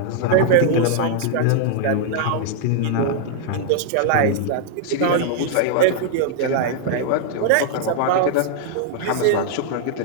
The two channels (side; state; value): both; different; correlation -0.01